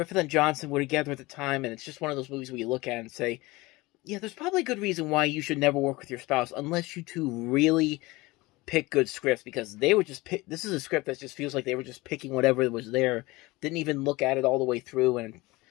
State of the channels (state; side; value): quieter; right; 21.6 dB